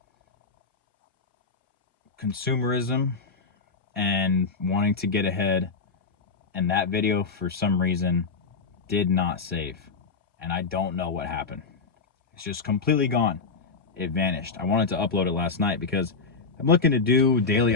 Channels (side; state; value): right; quieter; 4.7 dB